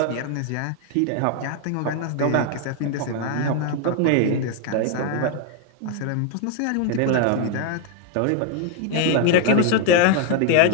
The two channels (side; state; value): both; different; correlation 0.00